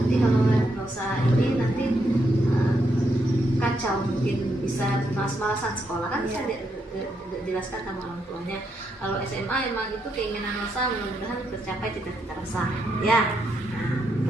kalau Rosa ini nanti kacau, mungkin bisa malas-malasan sekolah kan, bisa dijelaskan sama orang tuanya. Kalau SMA emang itu keinginan Rosa, mudah-mudahan tercapai cita-cita Rosa ya.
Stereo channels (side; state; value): both; normal; correlation 0.79